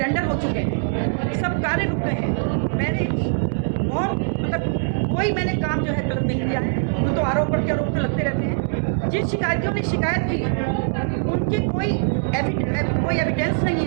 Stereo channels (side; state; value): left; silent; 64 dB below the other